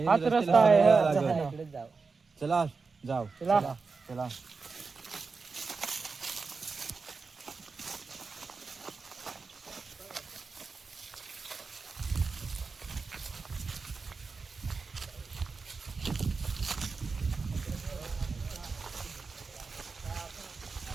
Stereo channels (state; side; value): quieter; left; 4.6 dB